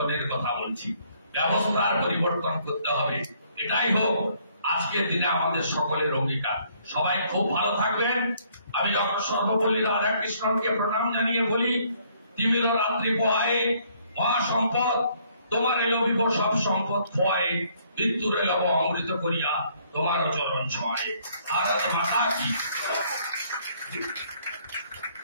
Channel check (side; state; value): both; inverted; correlation -0.65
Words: কথা বলছি। ব্যবস্থার পরিবর্তন করতে হবে, এটাই হোক আজকের দিনে আমাদের সকলের অঙ্গীকার। সবাই খুব ভালো থাকবেন। আমি ডক্টর সর্বপল্লী রাধাকৃষ্ণনকে প্রণাম জানিয়ে বলি, তিমির রাত্রি পোহায়ে মহাসম্পদ, তোমার এলবিব সব সম্পদ খোয়ায়ে, মৃত্যুর এলব অমৃত করিয়া তোমার চরণ ছোঁয়ায়ে। ভারত মাতা কি।